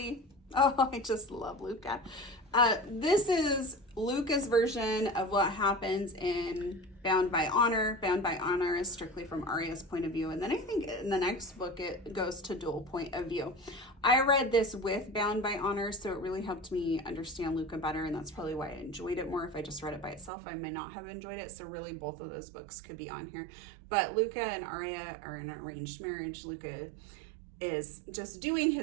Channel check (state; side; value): drops out; left; at 20.3 s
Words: Oh, I just love Luca. This is Luca's version of what happens in Bound by Honor. Bound by Honor is strictly from Arya's point of view. And then I think in the next book, it goes to dual point of view. I read this with Bound by Honor, so it really helped me understand Luca better. And that's probably why I enjoyed it more. If I just read it by itself, I may not have enjoyed it. So really both of those books could be on here. But Luca and Arya are in an arranged marriage. Luca is just doing